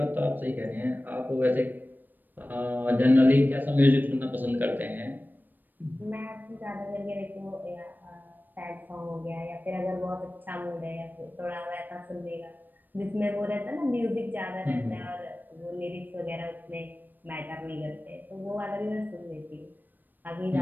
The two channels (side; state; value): left; late; 0.090 ms